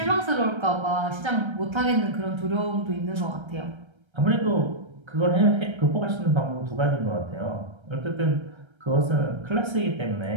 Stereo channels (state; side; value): late; left; 1.3 ms